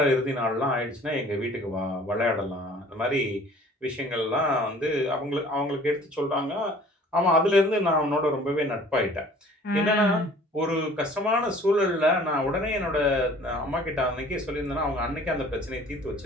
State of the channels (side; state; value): both; normal; correlation 0.50